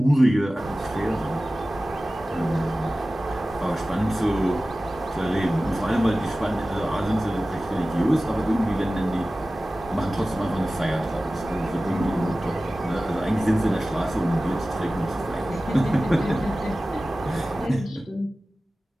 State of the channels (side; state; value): both; normal; correlation 0.96